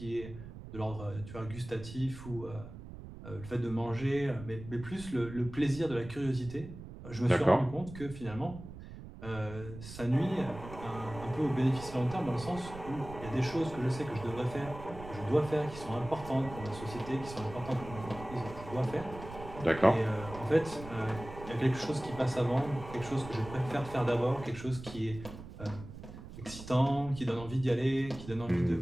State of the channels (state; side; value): noise; right; rumble, 13 dB below the sound